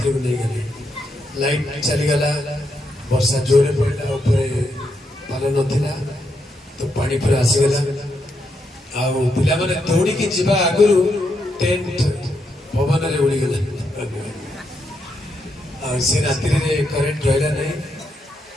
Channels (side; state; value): both; normal; correlation 0.81